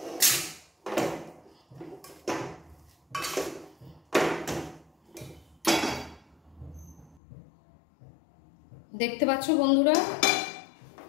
দেখতে পাচ্ছ বন্ধুরা,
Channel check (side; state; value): right; drops out; at 7.2 s